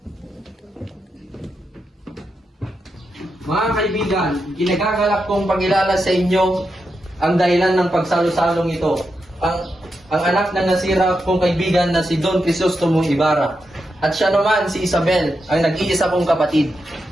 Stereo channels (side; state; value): both; normal; correlation 0.86